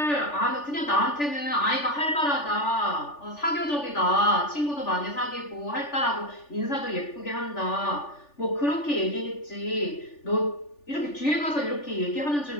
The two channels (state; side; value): late; right; 3.4 ms